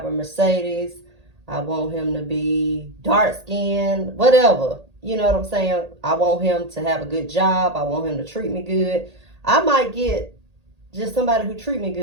a Mercedes. I want him to be dark skinned, whatever. You know what I'm saying? I want him to have a good job. I want him to treat me good. I might get just somebody who treat me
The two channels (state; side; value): late; left; 1.8 ms